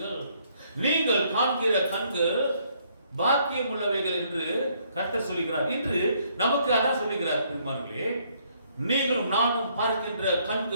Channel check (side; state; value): both; inverted; correlation -0.68